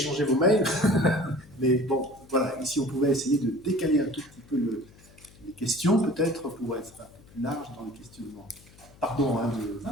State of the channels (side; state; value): left; noise; hum, 24 dB below the sound